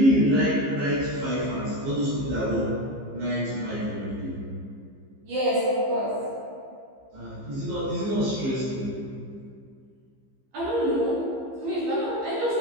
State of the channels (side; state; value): left; late; 15 ms